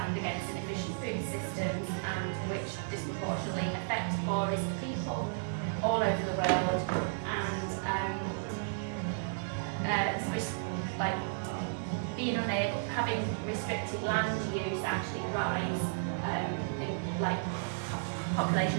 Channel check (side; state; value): left; silent; digital silence